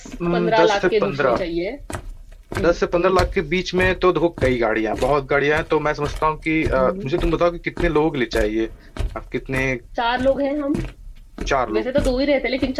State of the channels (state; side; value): identical; both; correlation 1.00